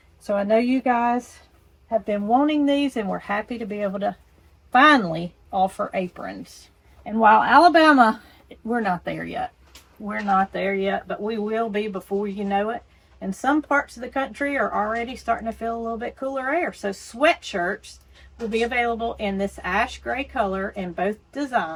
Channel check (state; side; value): identical; both; correlation 1.00